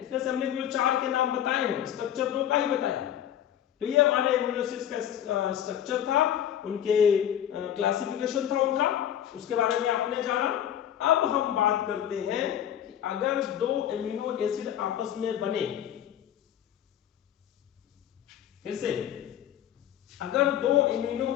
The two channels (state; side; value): quieter; right; 10.6 dB